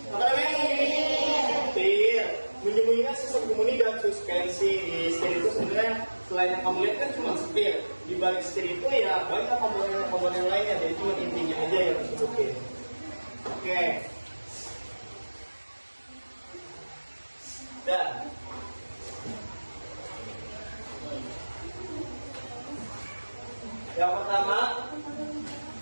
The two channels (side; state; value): both; inverted; correlation -1.00